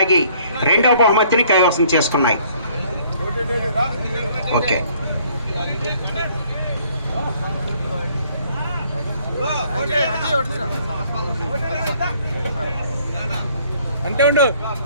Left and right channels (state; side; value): inverted; both; correlation -0.61